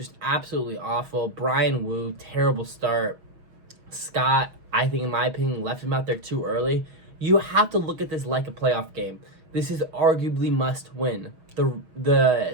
absolutely awful. Brian Wu, terrible start. Scott, I think in my opinion, left him out there too early. You have to look at this like a playoff game. This is arguably must win.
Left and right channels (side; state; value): left; late; 6.3 ms